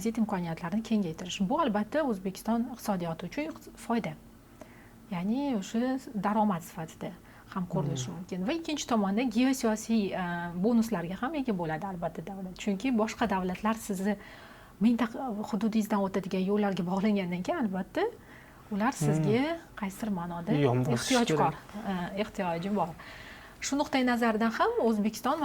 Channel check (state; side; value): identical; both; correlation 1.00